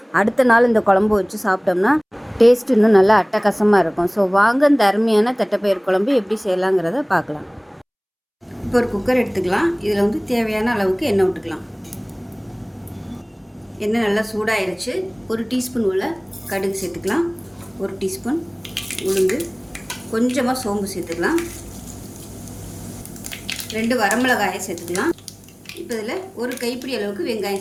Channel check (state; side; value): identical; both; correlation 1.00